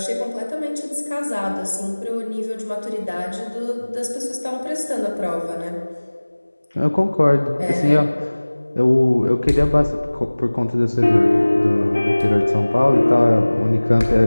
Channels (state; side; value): inverted; both; correlation -1.00